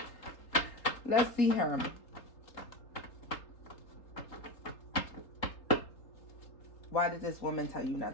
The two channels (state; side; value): late; right; 3.8 ms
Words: Let's see her. Why did this woman tell you